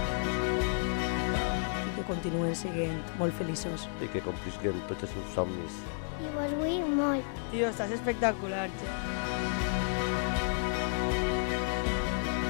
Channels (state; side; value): silent; right; digital silence